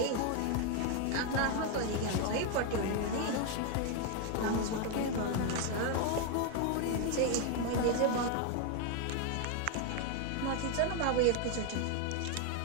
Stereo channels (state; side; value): different; both; correlation 0.01